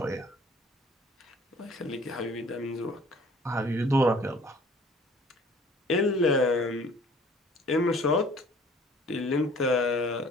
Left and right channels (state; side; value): normal; both; correlation 0.53